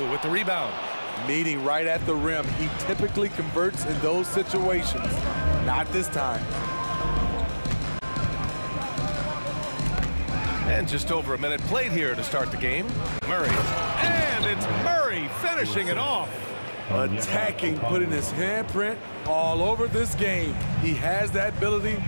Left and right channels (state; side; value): inverted; both; correlation -1.00